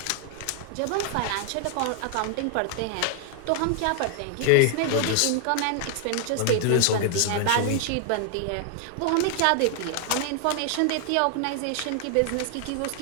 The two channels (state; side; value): different; both; correlation 0.00